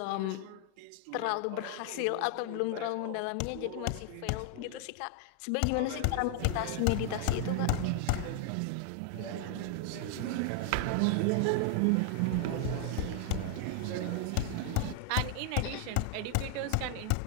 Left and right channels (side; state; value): both; different; correlation 0.00